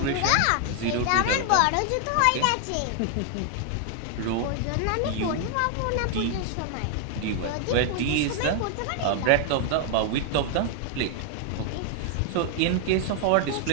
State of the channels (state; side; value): different; both; correlation 0.00